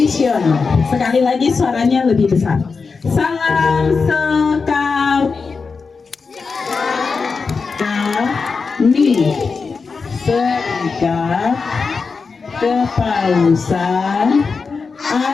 Sekali lagi suaranya lebih besar. Salam sekami. Kami serikat kepausan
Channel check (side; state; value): right; quieter; 4.8 dB